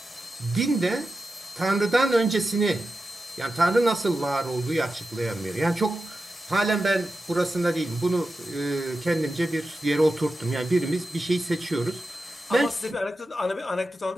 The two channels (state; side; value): normal; both; correlation 0.91